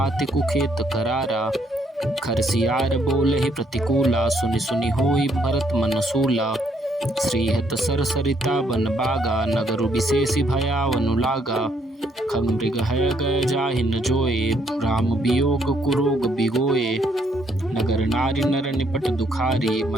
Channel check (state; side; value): normal; both; correlation 0.71